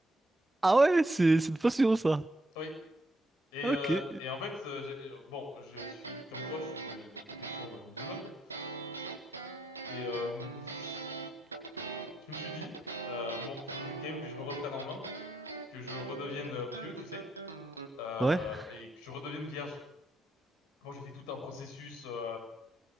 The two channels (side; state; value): both; normal; correlation 0.78